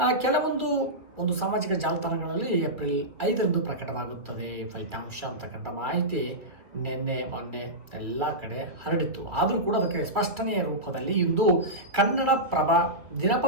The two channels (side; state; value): left; late; 2.5 ms